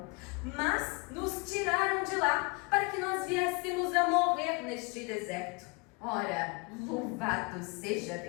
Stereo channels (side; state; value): right; quieter; 29.4 dB